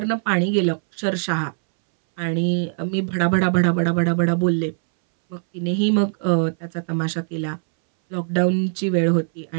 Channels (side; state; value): left; silent; 63 dB below the other